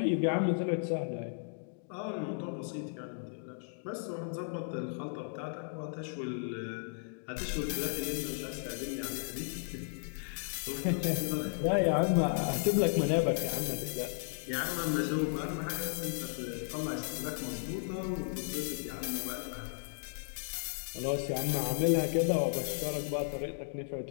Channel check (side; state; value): right; silent; digital silence